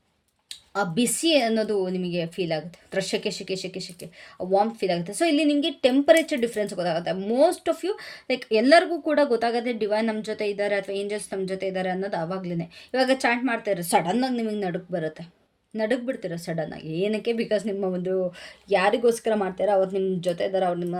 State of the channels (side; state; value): both; identical; correlation 1.00